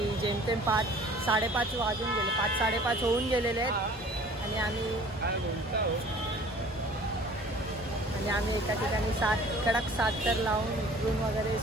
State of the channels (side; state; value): both; normal; correlation 0.50